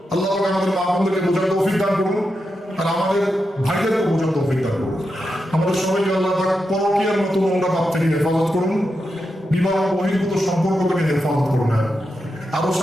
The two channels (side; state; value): both; normal; correlation 0.87